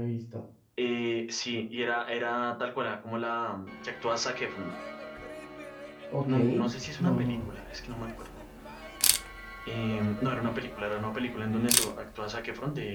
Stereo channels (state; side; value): identical; both; correlation 1.00